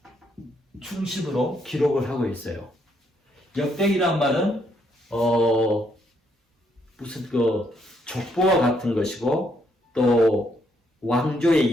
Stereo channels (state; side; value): normal; both; correlation 0.73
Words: 중심으로 기록을 하고 있어요. 역대기란 말은 무슨 족보와 같은 것이고 또